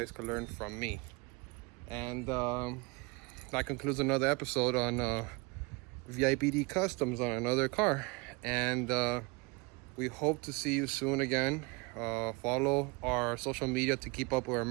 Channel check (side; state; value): left; quieter; 27.5 dB